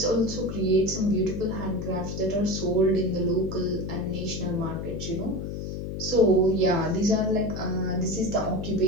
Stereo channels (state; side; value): noise; left; hum, 5 dB below the sound